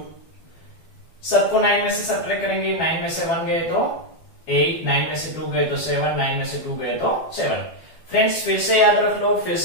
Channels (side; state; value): right; late; 12 ms